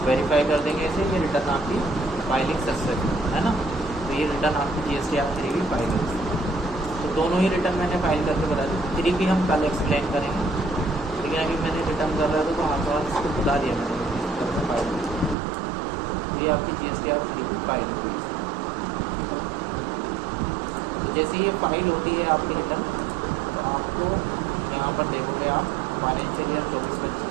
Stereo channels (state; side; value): drops out; left; at 15.4 s